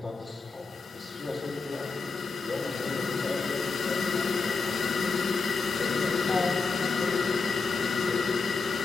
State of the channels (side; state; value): right; quieter; 4.4 dB